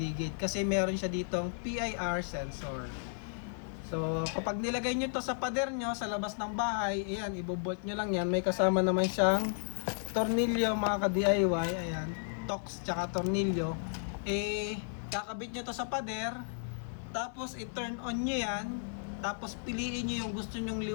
kasi meron siya ditong PIR sensor. So kapag nilagay nyo to sa pader nyo sa labas ng bahay, ayan, ibobolt nyo lang yan. May kasama naman siyang tornilyo mga ka-DIY, ayan, tox tsaka tornilyo. Kakabit nyo to sa pader, tapos i-turn on nyo yan, tapos piliin nyo yung gusto nyong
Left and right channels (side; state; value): right; silent; 55 dB below the other